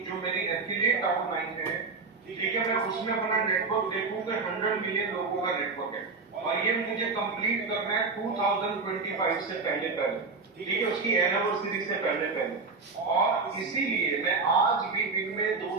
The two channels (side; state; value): left; quieter; 4.3 dB